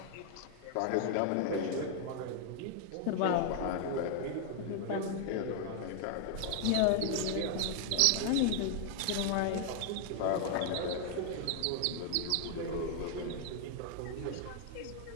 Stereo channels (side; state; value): both; different; correlation 0.00